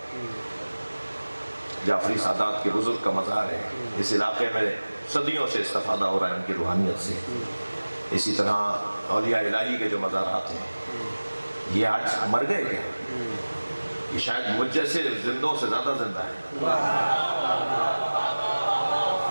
جعفری سادات کے بزرگ کا مزار ہے، اس علاقے میں صدیوں سے استفادہ ہو رہا ہے ان کی روحانیت سے۔ اسی طرح اولیاء الہی کے جو مزارات ہیں، یہ آج مر گئے کیا؟ یہ شاید مجھ جیسے زندوں سے زیادہ زندہ ہے،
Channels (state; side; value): inverted; both; correlation -1.00